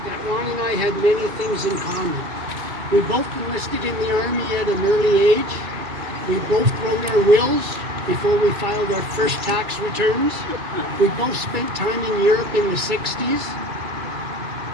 that Ron and I had many things in common. We both enlisted in the Army at an early age. We both wrote our wills before we filed our first tax returns. We both spent time in Europe in the 60s.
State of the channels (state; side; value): late; left; 2.3 ms